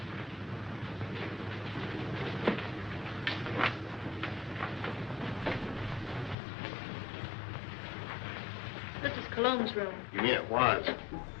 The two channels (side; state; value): right; drops out; at 6.4 s